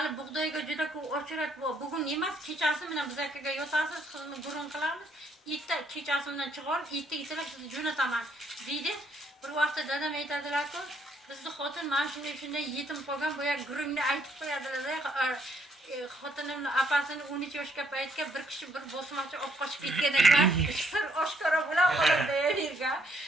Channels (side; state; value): both; normal; correlation 0.70